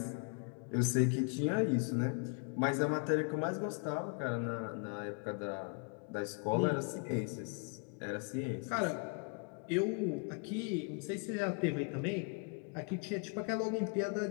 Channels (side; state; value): right; quieter; 37.1 dB